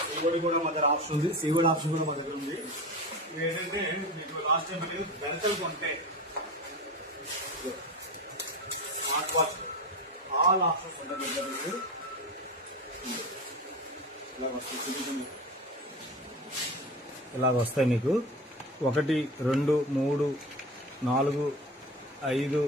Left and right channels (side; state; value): both; normal; correlation 0.28